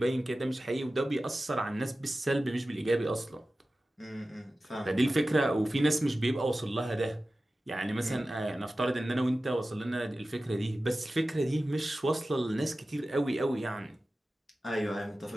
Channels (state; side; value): normal; both; correlation 0.95